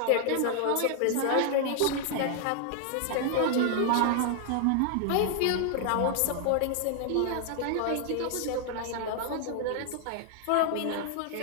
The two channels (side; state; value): both; different; correlation 0.00